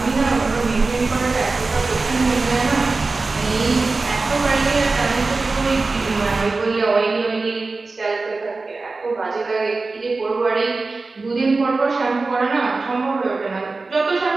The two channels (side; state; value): left; quieter; 3.7 dB